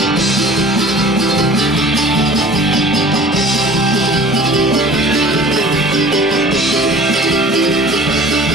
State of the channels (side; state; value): both; normal; correlation 0.45